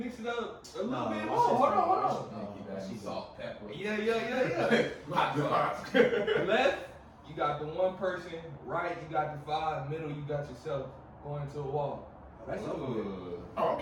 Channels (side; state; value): both; identical; correlation 1.00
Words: it up a little No, bit. watch Oh, hold this, on. Keep that salt, pepper. Yeah. Hot sauce. Left, you got the 1 person. Right, you got the 5. Middle, you got yourself going to a wall. That's Ooh. Oh, I'm